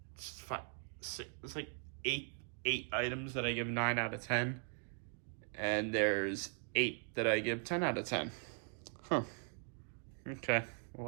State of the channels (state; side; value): silent; left; 51 dB below the other